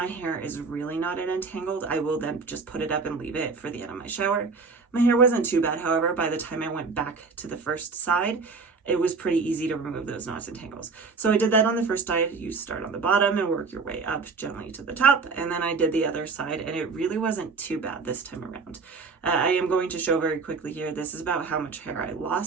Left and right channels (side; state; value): left; quieter; 4.6 dB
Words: hair is really knotted and tangled, I will then just put it up and leave it for the end of my shower. My hair wasn't too bad, however. By the time I went back to the first side, it was pretty easy to remove those knots and tangles. So I did that on the first side. You start on the bottom and work your way up gently to the top. And then I did the other side, and it really wasn't too bad this time around. I am going to show very quickly here. This is about how much hair I